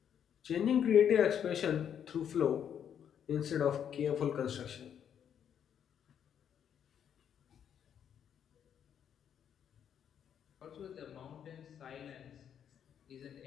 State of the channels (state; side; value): quieter; right; 8.8 dB